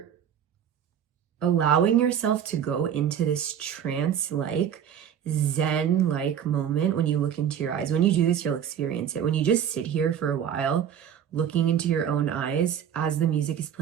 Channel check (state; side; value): quieter; left; 9.0 dB